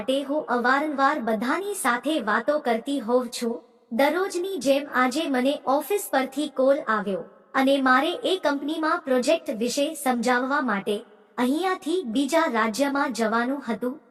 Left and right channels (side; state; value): both; identical; correlation 1.00